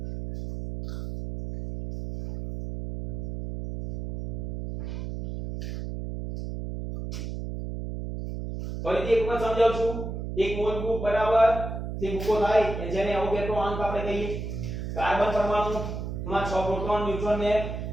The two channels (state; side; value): noise; right; hum, 5 dB below the sound